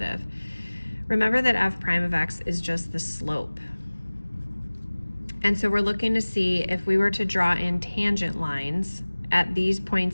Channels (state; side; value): inverted; both; correlation -1.00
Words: Remember that f prime of x is just the slope. And so we're looking to see if we were to draw in tangent lines at these